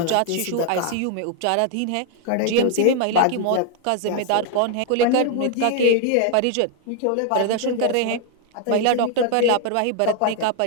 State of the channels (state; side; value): different; both; correlation 0.00